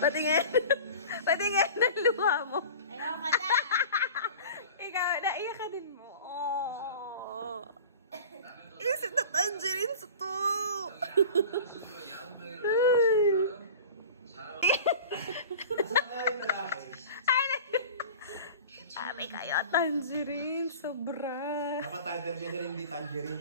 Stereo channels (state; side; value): inverted; both; correlation -0.38